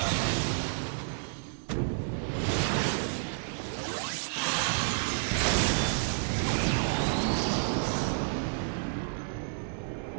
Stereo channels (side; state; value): left; silent; 57 dB below the other